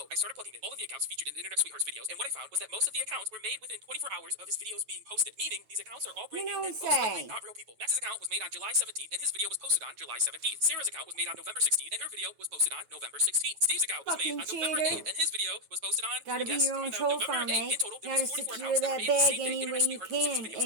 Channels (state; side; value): late; left; 9.2 ms